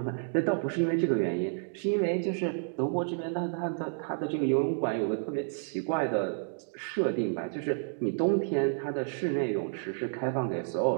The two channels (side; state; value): left; silent; digital silence